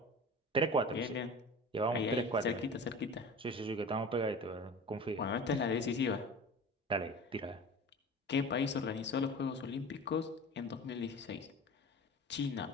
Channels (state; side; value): normal; both; correlation 0.36